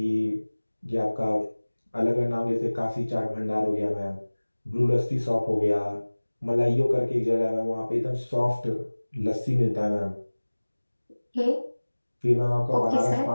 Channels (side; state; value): both; inverted; correlation -1.00